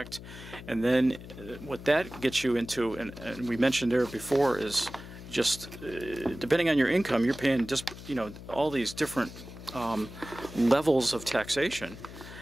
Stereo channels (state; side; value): noise; left; hum, 14 dB below the sound